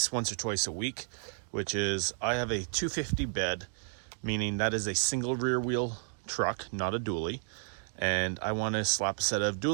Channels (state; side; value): silent; left; digital silence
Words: once or twice a week, which is I have a 250 bed, meaning that is a single rear wheel truck, not a dually, and I want to slap a set of